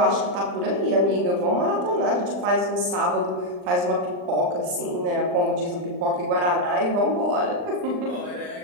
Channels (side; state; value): left; late; 39 ms